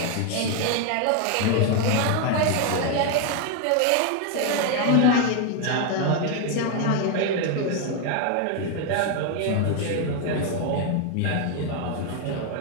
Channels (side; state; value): both; different; correlation 0.01